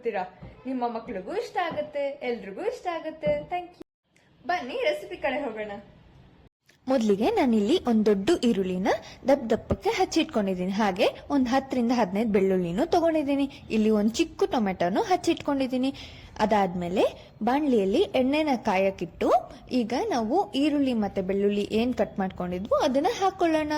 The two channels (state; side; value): identical; both; correlation 1.00